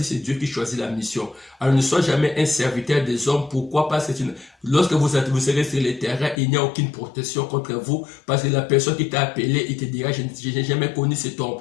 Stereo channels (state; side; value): drops out; right; at 6.4 s